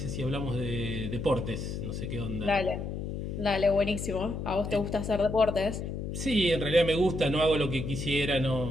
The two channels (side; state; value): left; noise; hum, 5 dB below the sound